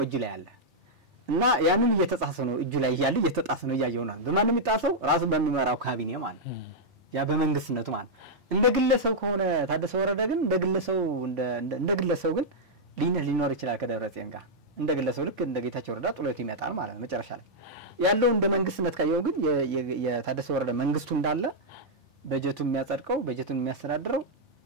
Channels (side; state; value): both; normal; correlation -0.06